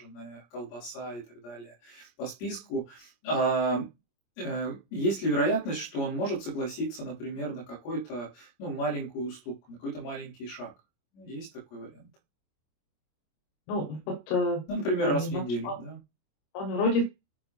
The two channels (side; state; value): right; late; 25 ms